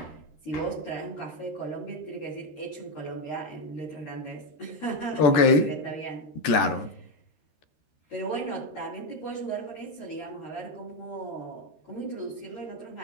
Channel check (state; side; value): late; right; 13 ms